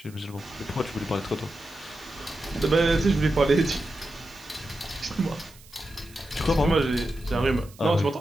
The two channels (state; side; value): noise; right; hiss, 23 dB below the sound